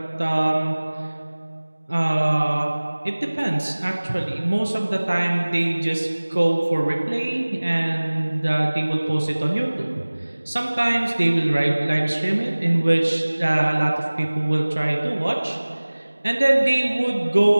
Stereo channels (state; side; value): inverted; both; correlation -1.00